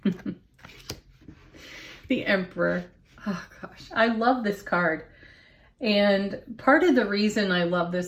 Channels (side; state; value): both; identical; correlation 1.00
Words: The Emperor. Oh gosh, I love this card. And part of the reason I love